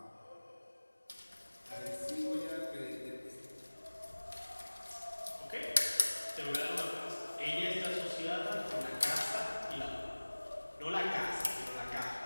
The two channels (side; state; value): both; inverted; correlation -1.00